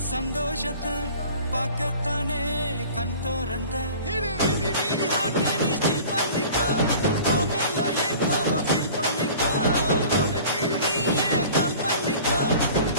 சந்தோஷத்தை பார்க்கத்தானே கண் திறந்த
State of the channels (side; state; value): both; inverted; correlation -0.44